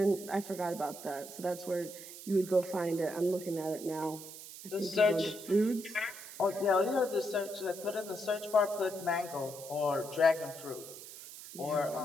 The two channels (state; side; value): noise; right; hiss, 13 dB below the sound